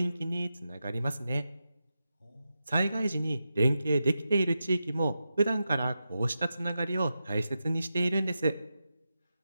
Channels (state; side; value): inverted; both; correlation -0.90